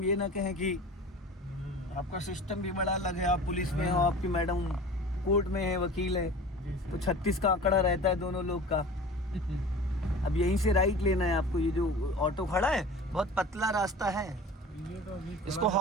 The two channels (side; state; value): both; normal; correlation 0.39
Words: ये ना कहें कि आपका सिस्टम भी बड़ा अलग है, आप पुलिस में हो, आपकी मैडम कोर्ट में है, वकील है, जी तो सर। 36 का आंकड़ा रहता है दोनों लोग का। अब यहीं से राइट लेना है आपको। ये जो ऑटो खड़ा है बहुत पतला रास्ता है, ये तो अभी इसको